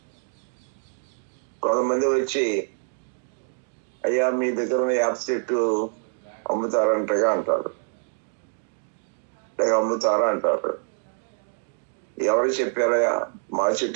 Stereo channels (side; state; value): left; silent; digital silence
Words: కొంతమంది వచ్చి అయ్యా మీ దగ్గర ఉన్న యాప్ చెట్టు అమ్ముతారంటగా అంటారు, లేక అమ్ముతారా అంటారు. ఎవరు చెప్పారయ్యా మా